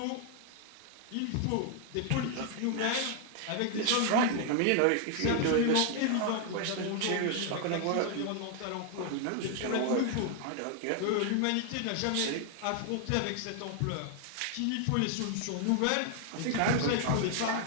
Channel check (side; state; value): both; different; correlation 0.00